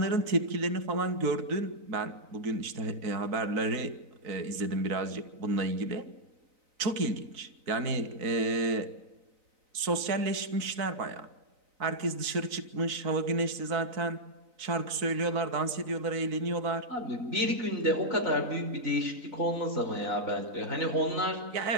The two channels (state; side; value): late; left; 3.9 ms